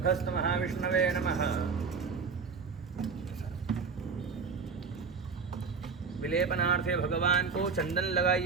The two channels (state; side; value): quieter; left; 5.3 dB